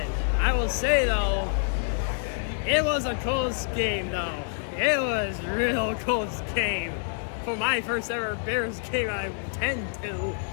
I will say, though, it was a close game, though. It was a real close game. For my first ever Bears game I attend to.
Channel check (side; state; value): right; silent; digital silence